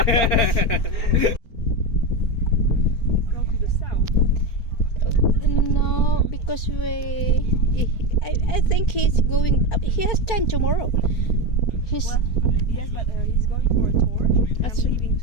Go to the south. no, because I think he's going. He has time tomorrow. He's Well, yes, but he's going for a tour That's and right. leaving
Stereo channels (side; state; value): right; late; 4.3 ms